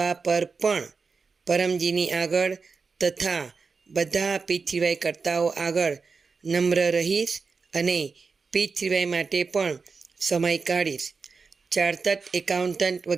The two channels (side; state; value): left; quieter; 4.8 dB